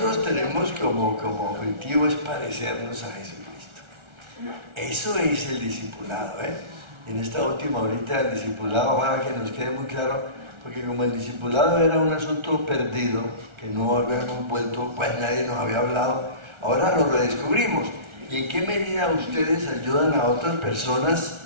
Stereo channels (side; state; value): left; late; 1.4 ms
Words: tenemos como objetivo es parecernos a Jesucristo. Eso es el discipulado, ¿eh? En esta última horita del discipulado, ojalá que nos quede muy claro, porque como el discipulado era un asunto perdido, que no habíamos vuelto, pues nadie nos había hablado, ahora lo redescubrimos. ¿Y en qué medida ustedes ayudan a otras personas